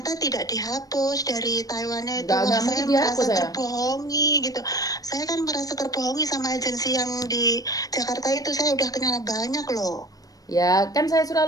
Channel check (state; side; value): late; right; 0.18 ms